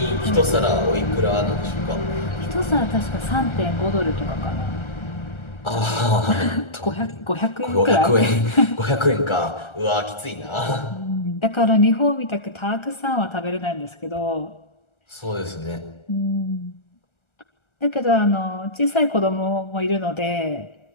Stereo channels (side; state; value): right; late; 1.3 ms